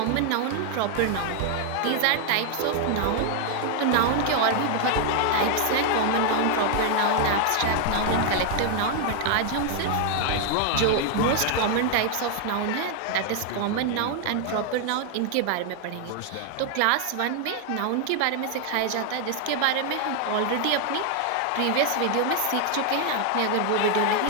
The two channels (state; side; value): different; both; correlation 0.00